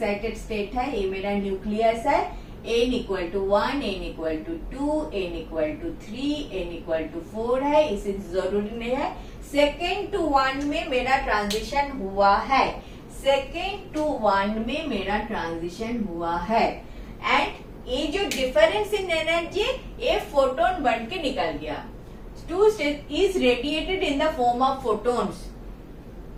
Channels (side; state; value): both; identical; correlation 1.00